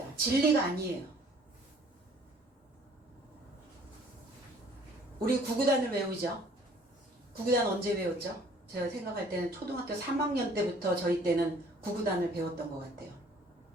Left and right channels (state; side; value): normal; both; correlation 0.56